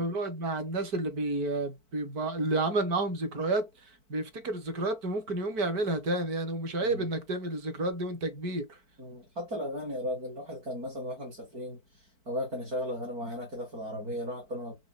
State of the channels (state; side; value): late; left; 4.5 ms